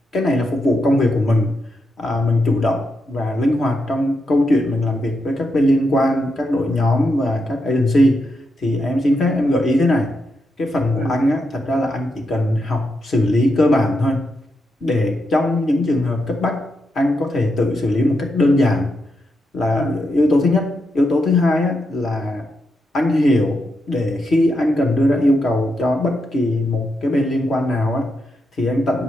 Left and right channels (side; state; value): both; normal; correlation 0.83